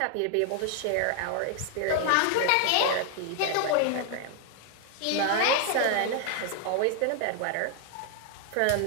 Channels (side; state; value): both; different; correlation 0.00